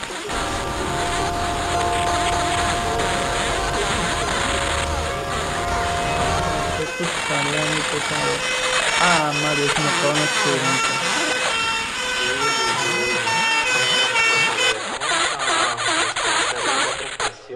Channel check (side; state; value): both; identical; correlation 1.00